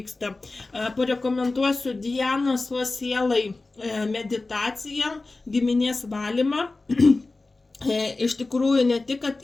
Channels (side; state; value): right; quieter; 3.4 dB